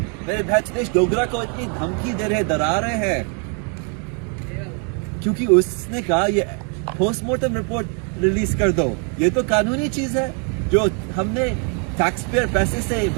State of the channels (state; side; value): quieter; left; 38.7 dB